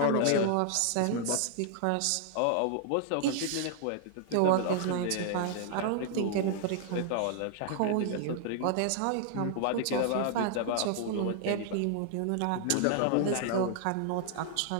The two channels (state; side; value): different; both; correlation 0.00